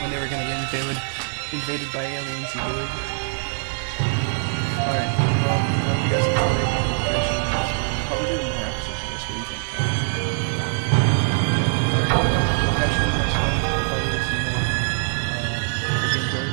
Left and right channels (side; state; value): left; silent; digital silence